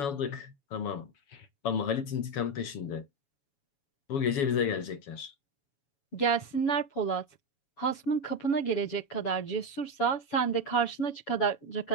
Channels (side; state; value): right; late; 7.1 ms